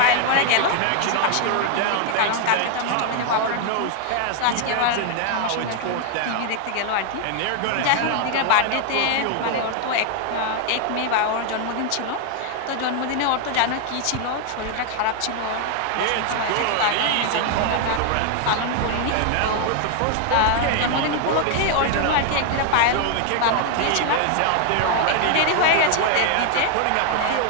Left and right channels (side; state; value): both; different; correlation 0.00